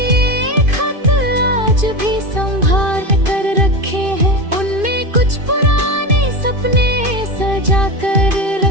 खत आज भी संभाल कर रखे हैं, उनमें कुछ पुराने सपने सजा कर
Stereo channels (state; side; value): late; left; 2.5 ms